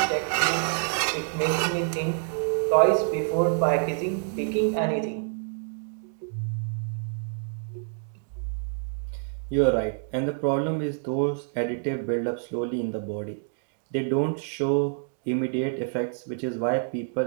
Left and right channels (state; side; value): silent; left; digital silence